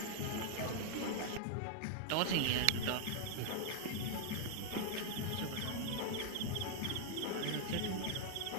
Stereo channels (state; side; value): different; both; correlation -0.01